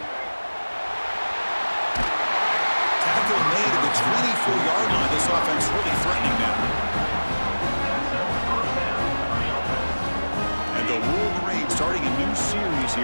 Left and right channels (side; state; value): both; inverted; correlation -1.00